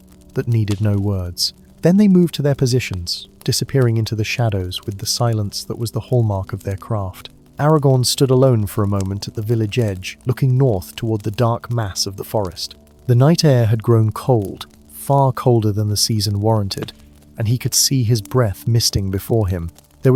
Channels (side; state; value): both; identical; correlation 1.00